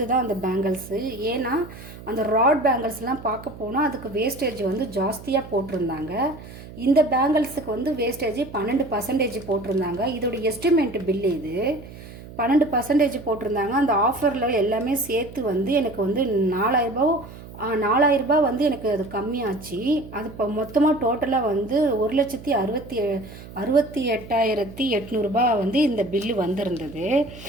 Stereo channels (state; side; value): noise; right; hum, 16 dB below the sound